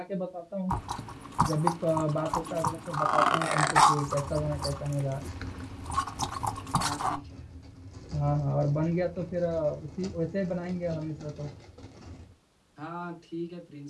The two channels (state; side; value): identical; both; correlation 1.00